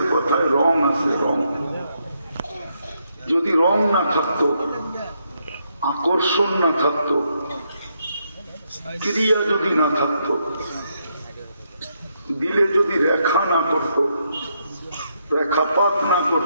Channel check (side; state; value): both; inverted; correlation -0.77